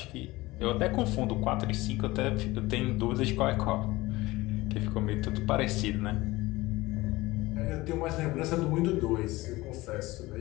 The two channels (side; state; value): right; quieter; 19.8 dB